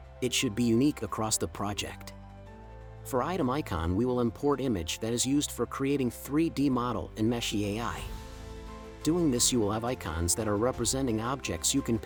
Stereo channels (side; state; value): both; identical; correlation 1.00